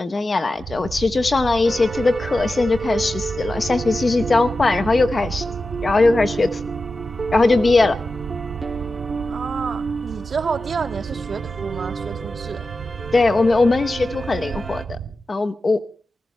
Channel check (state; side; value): normal; both; correlation 0.92